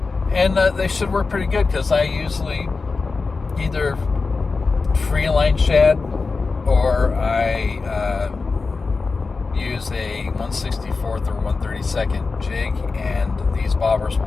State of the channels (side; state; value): right; quieter; 4.2 dB